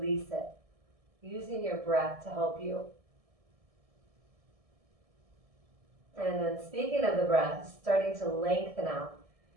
it, using your breath to help you. And then speaking of the breath, starting to lengthen out.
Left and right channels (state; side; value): late; left; 1.6 ms